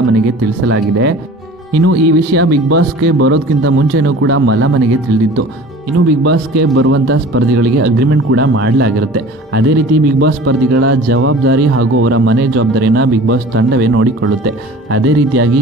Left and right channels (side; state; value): both; normal; correlation 0.43